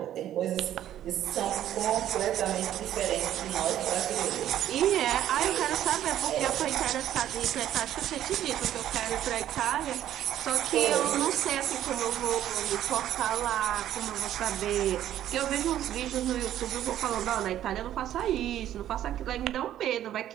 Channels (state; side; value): quieter; left; 11.8 dB